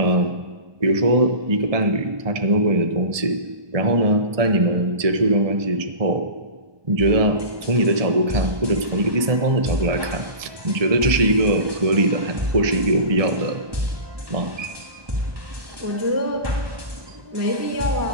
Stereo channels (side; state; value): left; late; 1.6 ms